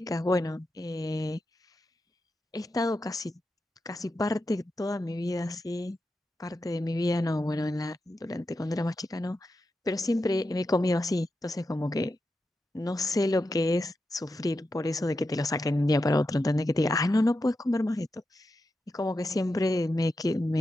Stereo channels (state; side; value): normal; both; correlation 0.89